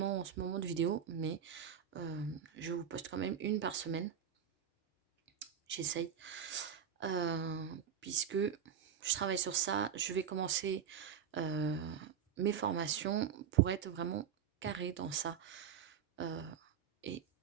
en ce moment de vidéos, mais je vous poste quand même une par semaine, j'essaye, puisque je travaille sur ça. Je vais commencer mes formations pour être vraiment carré dans ça et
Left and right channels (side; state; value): left; quieter; 8.2 dB